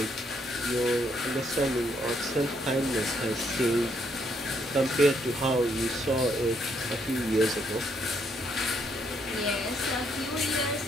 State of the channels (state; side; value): normal; both; correlation 0.73